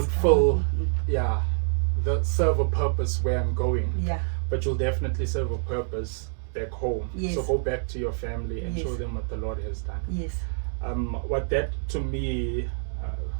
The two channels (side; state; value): left; silent; digital silence